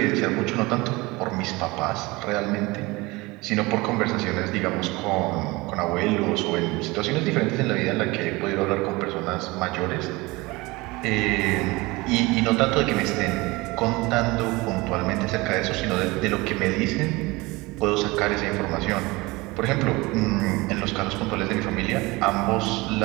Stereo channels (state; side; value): quieter; left; 22.8 dB